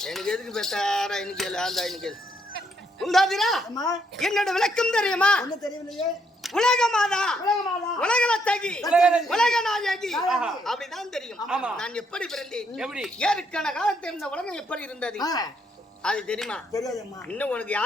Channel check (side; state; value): both; normal; correlation 0.74